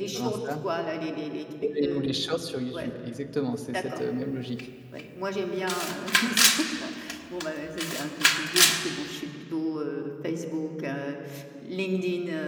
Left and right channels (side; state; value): both; identical; correlation 1.00